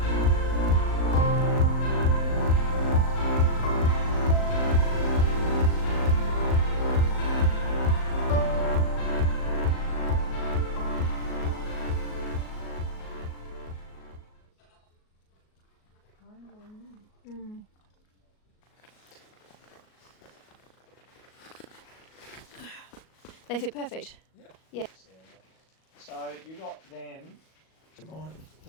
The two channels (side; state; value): right; late; 38 ms